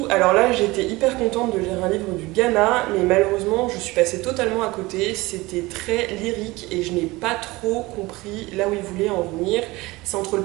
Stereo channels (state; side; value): quieter; left; 21.3 dB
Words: Alors là, j'étais hyper contente de lire un livre du Ghana, mais malheureusement, je suis passée totalement à côté. C'était très lyrique et je n'ai pas trop compris là où il voulait en venir. C'est entre le